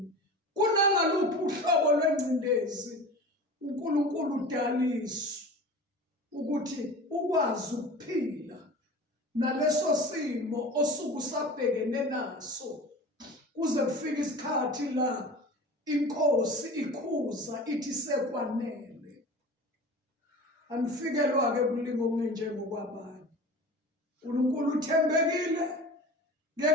kunangaluphi uhlobo lwengcindezi, uNkulunkulu udaliswe ukuthi ukwazi ukuphila naleso simo osuke usabhekene naso, kuze kufike isikhathi la inkosi ikhuza ithi sekwanele. Anifikelwa-ke kulinga okungenjengokwabanye. uNkulunkulu uthembekile,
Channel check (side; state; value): both; normal; correlation 0.36